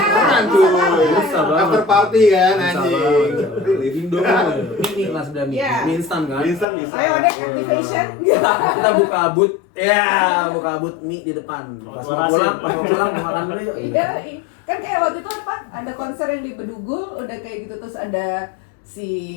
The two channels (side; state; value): right; drops out; at 6.7 s